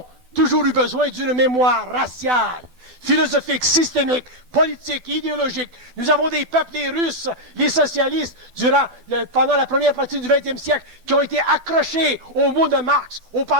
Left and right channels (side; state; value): left; late; 12 ms